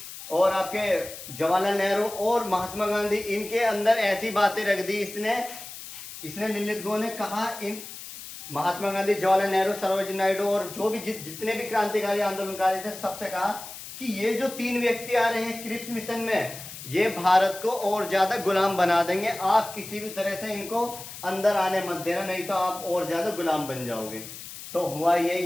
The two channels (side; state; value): left; noise; hiss, 12 dB below the sound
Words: और आपके जवाहरलाल नेहरू और महात्मा गांधी, इनके अंदर ऐसी बातें रख दी इसने लिनलिथ गो ने कहा, इन महात्मा गांधी, जवाहरलाल नेहरू, सरोजिनी नायडू और जो भी जितने भी क्रांतिकारी आंदोलनकारी थे, सबसे कहा कि ये जो 3 व्यक्ति आ रहे हैं क्रिप्स मिशन में, ये भारत को और ज्यादा गुलाम बना देंगे। आप किसी भी तरह से इनको अंदर आने मत देना, नहीं तो आप और ज्यादा गुलाम बन जाओगे। तो हुआ ये,